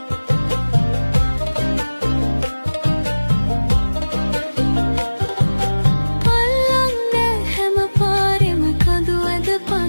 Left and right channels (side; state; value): both; inverted; correlation -1.00